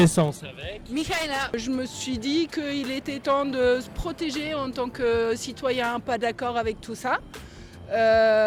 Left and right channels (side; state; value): both; identical; correlation 1.00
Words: avec Michaela. Je me suis dit qu'il était temps de se protéger en tant que citoyen pas d'accord avec tout ça.